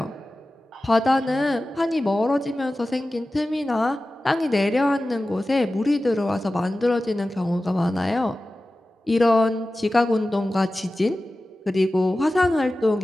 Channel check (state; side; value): normal; both; correlation 0.95